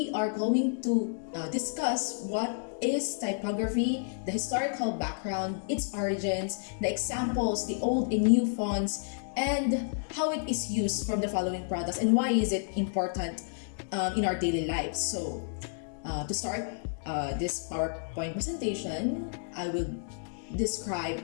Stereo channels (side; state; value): right; silent; digital silence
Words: are going to discuss what is typography, the historical background, its origins, the examples, the old and new fonts, and how it is used from the following products and why is it important in our daily lives. So, to start this PowerPoint presentation, I will describe